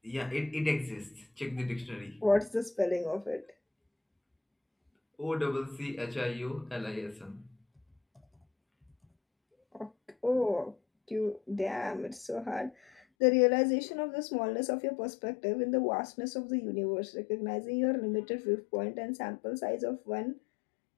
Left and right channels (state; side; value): drops out; right; at 13.0 s